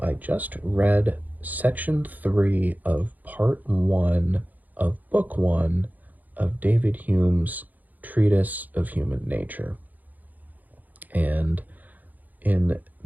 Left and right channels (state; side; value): late; left; 0.082 ms